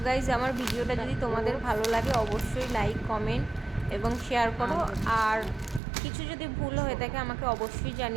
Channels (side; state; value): left; drops out; at 5.8 s